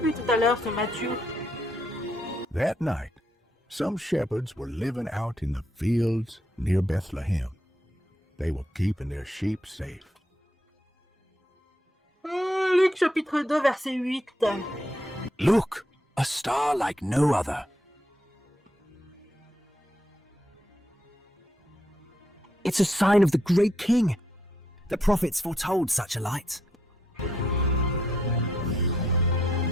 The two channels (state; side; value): normal; both; correlation 0.76